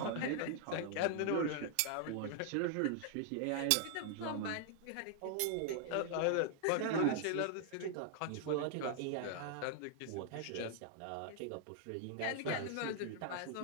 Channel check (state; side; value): different; both; correlation 0.00